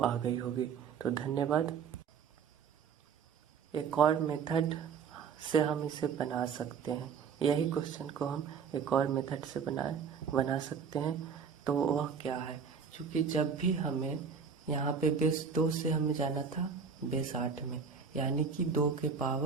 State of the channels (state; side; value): quieter; left; 6.3 dB